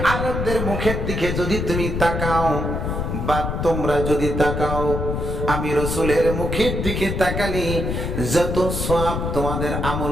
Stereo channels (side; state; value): left; noise; rumble, 2 dB below the sound